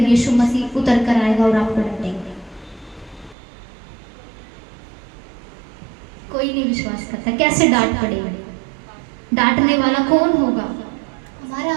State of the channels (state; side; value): drops out; left; at 3.4 s